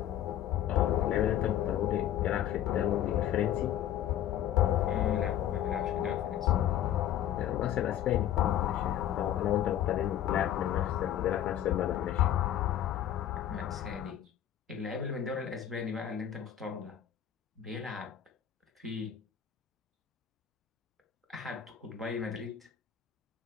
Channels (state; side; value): quieter; right; 11.0 dB